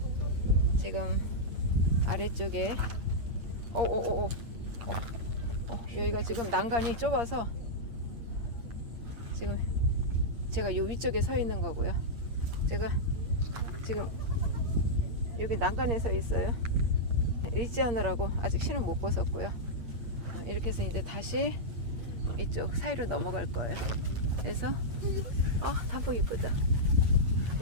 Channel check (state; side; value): late; left; 8.6 ms